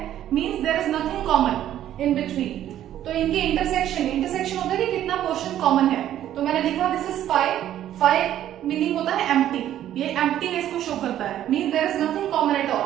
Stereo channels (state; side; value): quieter; left; 11.8 dB